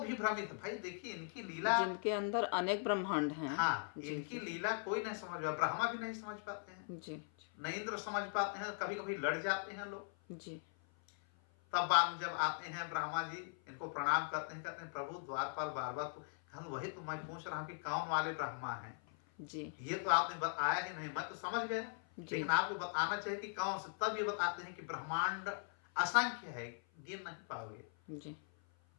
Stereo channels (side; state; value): right; silent; 51 dB below the other